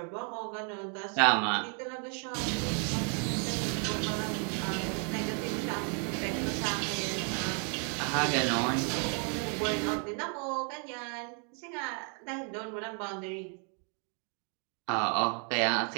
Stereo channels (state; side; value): quieter; left; 39.8 dB